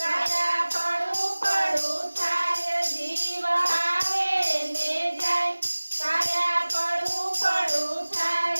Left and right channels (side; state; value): both; inverted; correlation -1.00